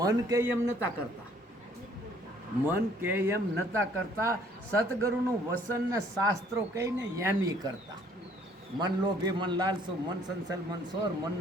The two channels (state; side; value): normal; both; correlation 0.60